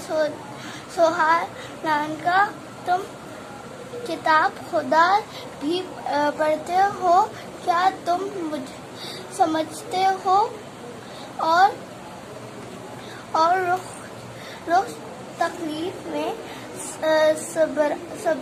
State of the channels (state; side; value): identical; both; correlation 1.00